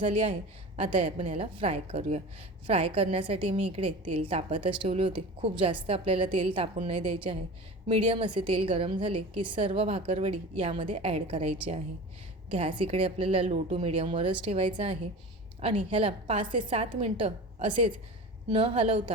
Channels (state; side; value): normal; both; correlation 0.34